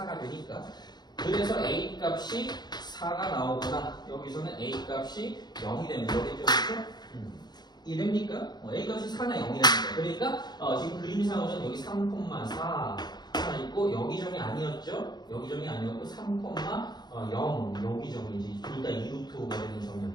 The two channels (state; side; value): late; right; 0.20 ms